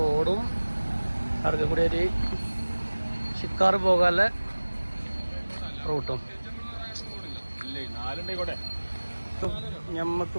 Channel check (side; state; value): both; inverted; correlation -1.00